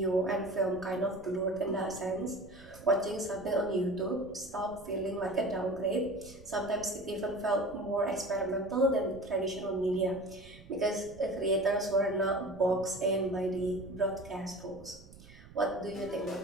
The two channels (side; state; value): right; noise; rumble, 20 dB below the sound